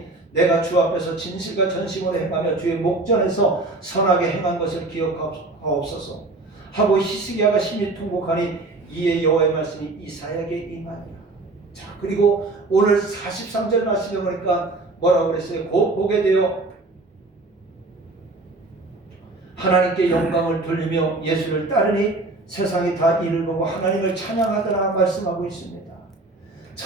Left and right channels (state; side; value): quieter; left; 3.1 dB